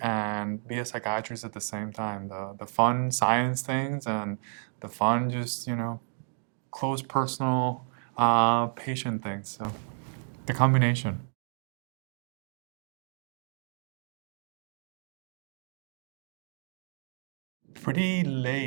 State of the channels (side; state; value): left; silent; 57 dB below the other